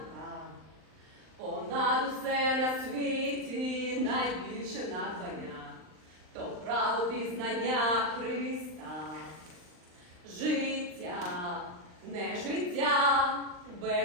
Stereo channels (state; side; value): late; left; 39 ms